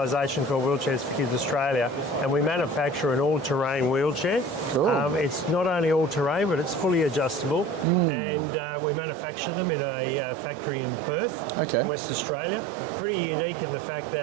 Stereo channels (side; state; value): left; drops out; at 7.9 s